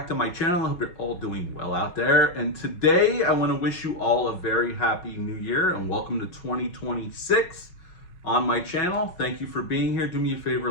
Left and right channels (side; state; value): right; late; 5.4 ms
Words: to my channel. I hope you're all doing well out there. And today I want to wish you all a very happy new year and welcome to 2026 on my channel. Thank you for being here. Do me a favor,